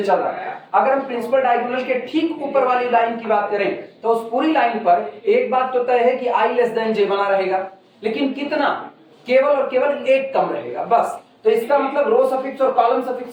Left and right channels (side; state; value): both; identical; correlation 1.00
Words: चल रहा है। अगर हम प्रिंसिपल डायगोनल के ठीक ऊपर वाली लाइन की बात करें तो उस पूरी लाइन पर एक बात तो तय है कि I<j बना रहेगा, लेकिन कितना? केवल और केवल 1 कम रहेगा, बस। तो इसका मतलब रो सफिक्स और कॉलम